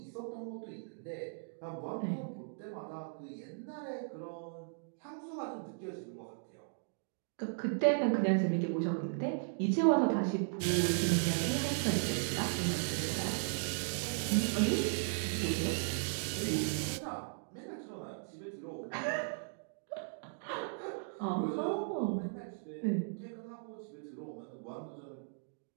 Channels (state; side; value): silent; left; digital silence